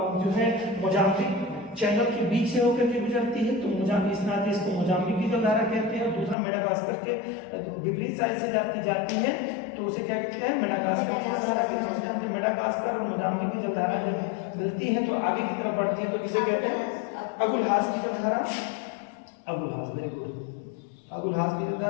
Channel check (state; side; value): drops out; right; at 6.4 s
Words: जो है मोजाम्बिक चैनल के बीच से होकर के गुजरती है, तो मोजाम्बिक इस नाते इसको मोजाम्बिक की जलधारा कहते हैं। दूसरा मेडागास्कर के विपरीत साइड से जाती है, तो उसे क्या कहते हैं, मेडागास्कर की जलधारा कहते हैं। मेडागास्कर और मोजाम्बिक की जलधारा जब मिलती है तो आगे की तरफ बढ़ती है, तो किसे कहते हैं, अगुलहास की जलधारा। अगुलहास, वेरी गुड, अगुलहास की